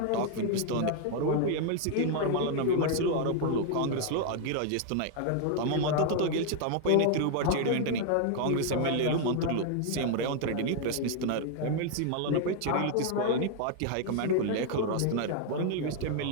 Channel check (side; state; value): both; different; correlation 0.00